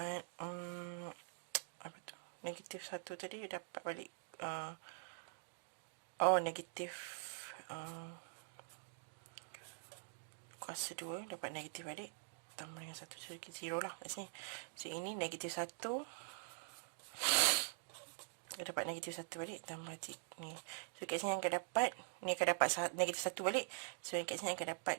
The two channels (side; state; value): left; silent; digital silence